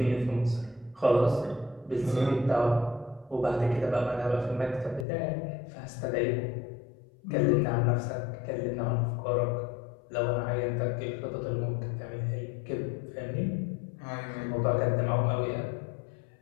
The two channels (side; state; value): right; drops out; at 5.1 s